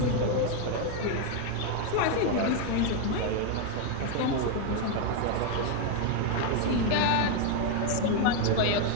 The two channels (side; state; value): both; different; correlation 0.01